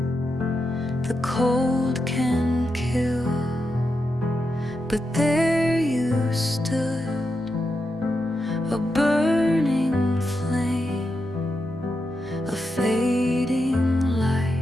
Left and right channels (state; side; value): normal; both; correlation 0.86